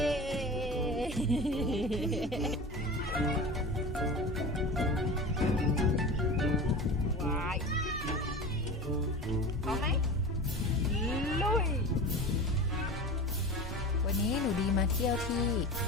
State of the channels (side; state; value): both; normal; correlation 0.32